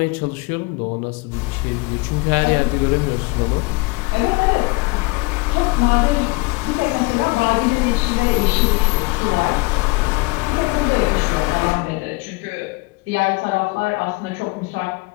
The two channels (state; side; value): quieter; right; 25.5 dB